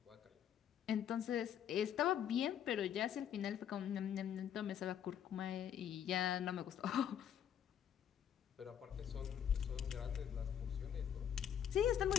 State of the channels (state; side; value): quieter; right; 9.3 dB